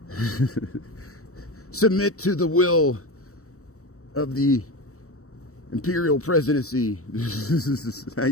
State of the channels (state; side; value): late; right; 0.65 ms